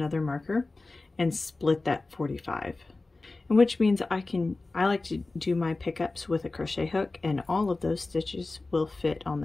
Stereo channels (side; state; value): right; quieter; 3.3 dB